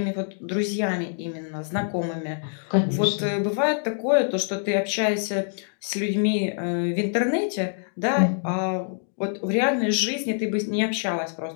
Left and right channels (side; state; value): right; silent; digital silence